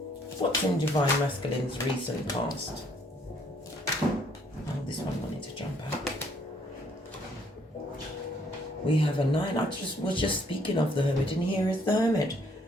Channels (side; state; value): both; normal; correlation 0.65